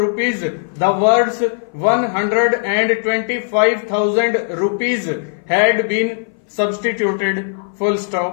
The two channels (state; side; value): silent; right; 60 dB below the other